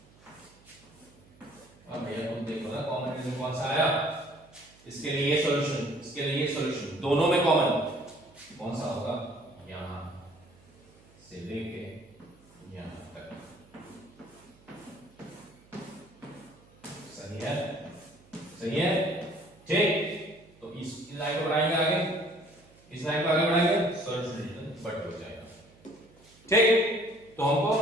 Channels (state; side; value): noise; right; hum, 27 dB below the sound